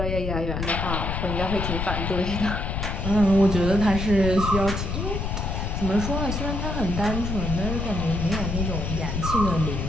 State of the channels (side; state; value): left; noise; rumble, 2 dB below the sound